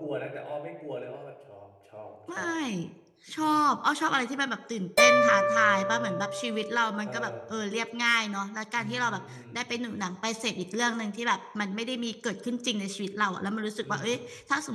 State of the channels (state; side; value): identical; both; correlation 1.00